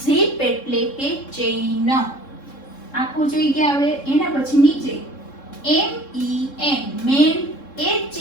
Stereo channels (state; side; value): late; right; 3.7 ms